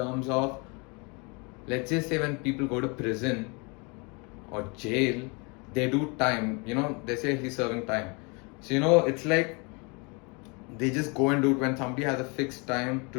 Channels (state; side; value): quieter; right; 31.1 dB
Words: of, let's just say when people go to prison or jail, they do time, they say he's serving time. So, it's like, they just go and do it. When somebody has a fixed time